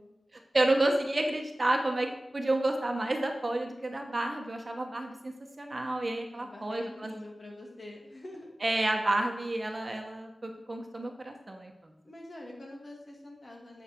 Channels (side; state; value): both; normal; correlation 0.97